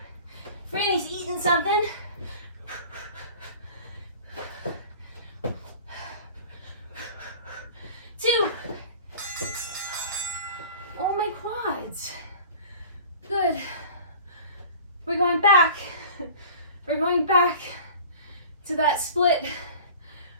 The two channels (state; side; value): inverted; both; correlation -0.42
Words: Franny's eating something. Two. Oh, my quads. Good. We're going back. We're going back to that split